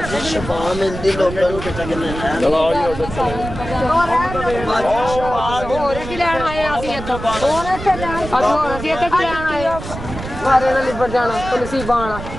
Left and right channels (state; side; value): noise; right; rumble, 9 dB below the sound